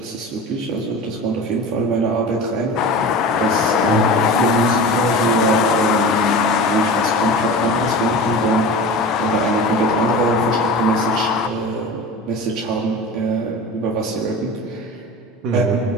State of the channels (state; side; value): normal; both; correlation 0.33